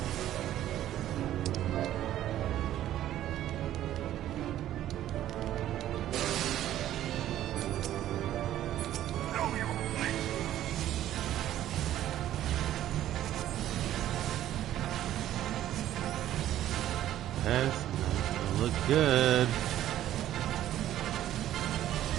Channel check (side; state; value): left; quieter; 12.6 dB